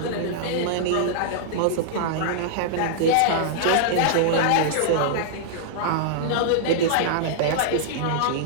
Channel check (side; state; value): both; different; correlation -0.01